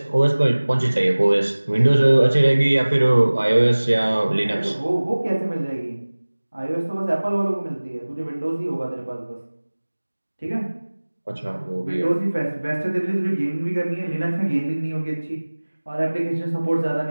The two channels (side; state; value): both; inverted; correlation -1.00